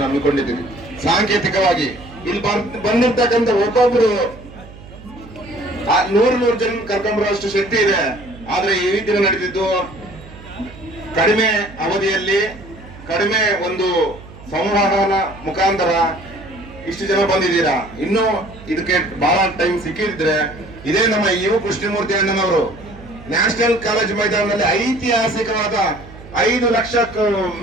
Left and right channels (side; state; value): right; noise; hum, 18 dB below the sound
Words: ಹಮ್ಮಿಕೊಂಡಿದ್ದೀವಿ. ಸಾಂಕೇತಿಕವಾಗಿ ಇಲ್ಲಿ ಬಂದಿರ್ತಕ್ಕಂಥ ಒಬ್ಬೊಬ್ರು 100 ಜನ ಕರ್ಕೊಂಬರುವಷ್ಟು ಶಕ್ತಿ ಇದೆ. ಆದ್ರೆ ಈ ದಿನ ನಡೆದಿದ್ದು ಕಡಿಮೆ ಅವಧಿಯಲ್ಲಿ ಕಡಿಮೆ ಒಂದು ಸಂವಹನ ಮುಖಾಂತರ ಇಷ್ಟು ಜನ ಬಂದಿದ್ದೀರಾ. ಇನ್ನು ಇದಕ್ಕೆ ಬಹಳ ಟೈಮ್ ಸಿಕ್ಕಿದ್ರೆ ಇದೇ ನಮ್ಮ ಯು ಕೃಷ್ಣಮೂರ್ತಿ ಅಣ್ಣನವರು ನ್ಯಾಷನಲ್ ಕಾಲೇಜ್ ಮೈದಾನದಲ್ಲಿ ಐತಿಹಾಸಿಕವಾದ 5 ಲಕ್ಷಕ್ಕೂ